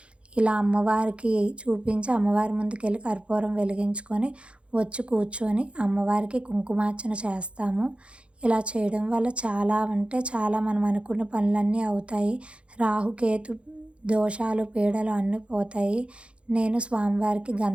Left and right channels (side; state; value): left; late; 0.059 ms